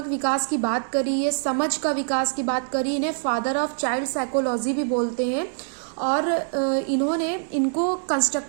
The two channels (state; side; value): silent; left; digital silence